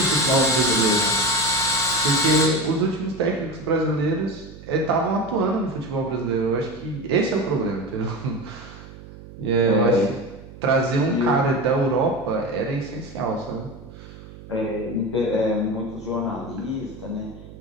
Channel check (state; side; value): noise; right; hum, 17 dB below the sound